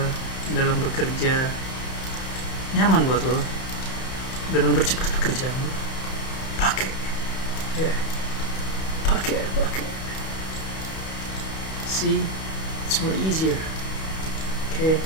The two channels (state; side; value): late; right; 31 ms